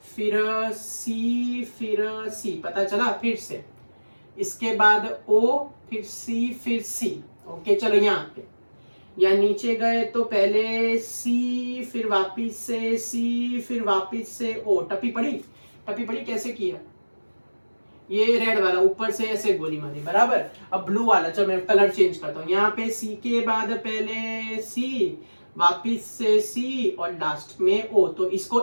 फिर C फिर C, पता चला, फिर से इसके बाद O फिर C फिर C। ओके चलो यहाँ पे या नीचे गए तो पहले सी, फिर वापिस से सी, फिर वापिस से ओ। टप्पी पड़ी? टप्पी पड़ी? कैसे किया? ये रेड वाला ऊपर से ऐसे गोली मारी, बराबर। अब ब्लू वाला, चलो मैं कलर चेंज करता हूँ। यहाँ पे सी के बाद पहले सी, वापिस से सी और लास्ट में ओ। तो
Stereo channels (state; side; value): inverted; both; correlation -1.00